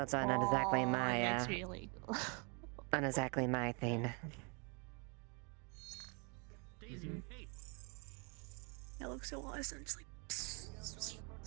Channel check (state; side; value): quieter; left; 34.0 dB